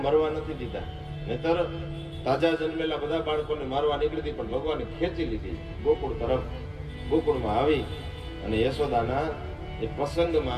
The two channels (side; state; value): both; identical; correlation 1.00